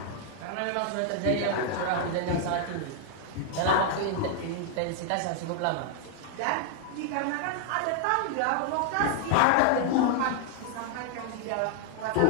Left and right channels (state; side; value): different; both; correlation 0.00